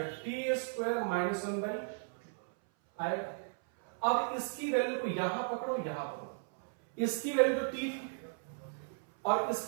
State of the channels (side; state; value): left; silent; 54 dB below the other